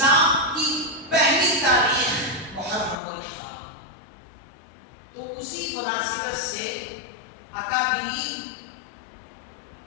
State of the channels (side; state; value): right; drops out; at 3.0 s